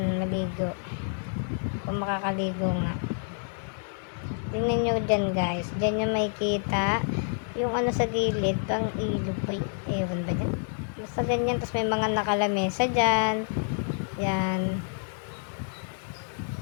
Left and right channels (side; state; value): right; silent; 59 dB below the other